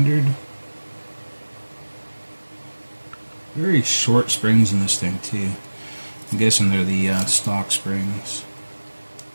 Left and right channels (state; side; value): inverted; both; correlation -1.00